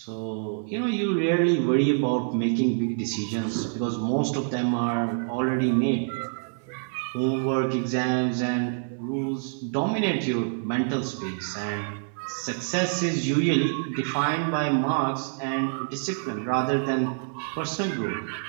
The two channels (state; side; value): silent; left; 61 dB below the other